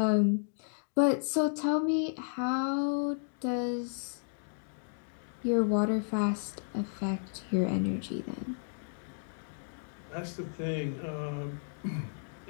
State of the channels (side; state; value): right; silent; digital silence